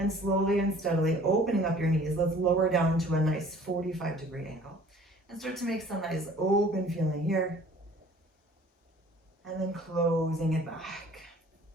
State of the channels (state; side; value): normal; both; correlation 0.51